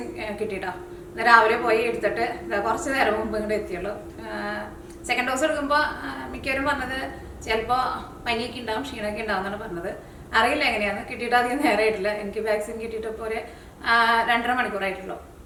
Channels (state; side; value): identical; both; correlation 1.00